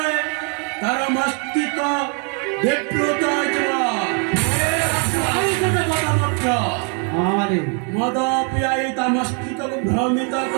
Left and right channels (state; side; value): quieter; left; 38.4 dB